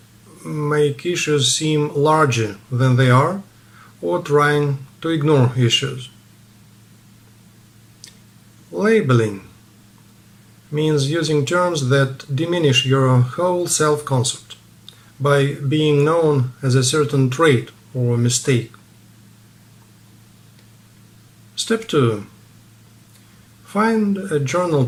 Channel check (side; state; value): both; identical; correlation 1.00